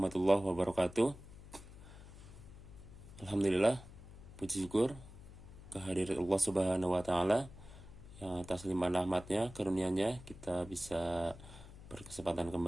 wabarakatuh. Alhamdulillah, puji syukur kehadirat Allah Subhanahu wa Ta'ala yang atas limpahan rahmatnya, karunia-Nya kita bisa berkesempatan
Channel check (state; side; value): noise; left; hum, 16 dB below the sound